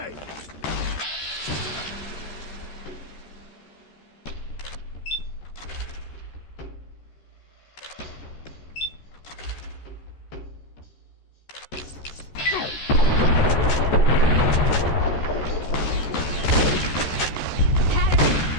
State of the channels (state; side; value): late; right; 14 ms